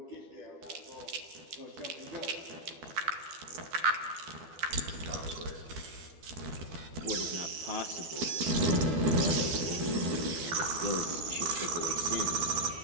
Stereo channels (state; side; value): late; left; 12 ms